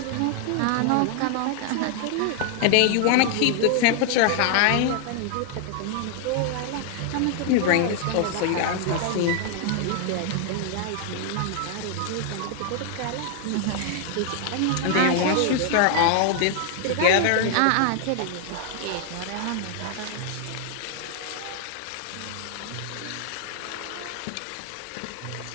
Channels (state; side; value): different; both; correlation 0.00